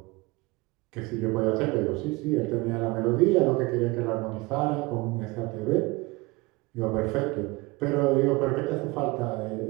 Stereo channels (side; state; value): left; quieter; 23.6 dB